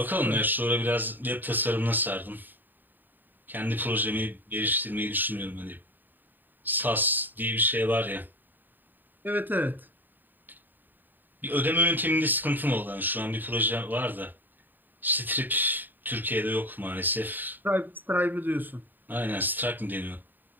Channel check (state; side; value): late; left; 0.090 ms